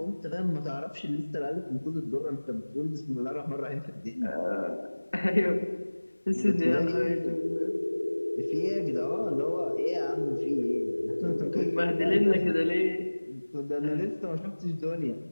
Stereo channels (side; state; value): both; inverted; correlation -1.00